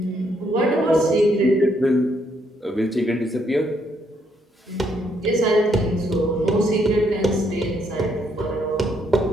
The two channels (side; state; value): both; normal; correlation 0.73